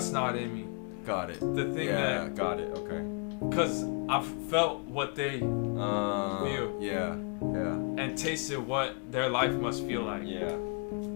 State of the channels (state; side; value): quieter; right; 38.8 dB